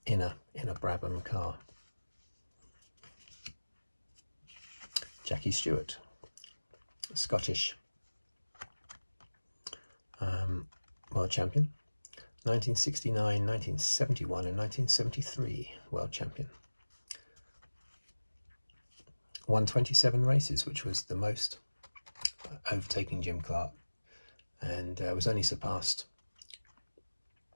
in a Brabham car. Jackie Stewart, Scottish world champion, 1969, 1971 and 1973 world champion. Won 27 races, which was the most, overtaking Jim Clark, and was only surpassed,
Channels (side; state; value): both; inverted; correlation -1.00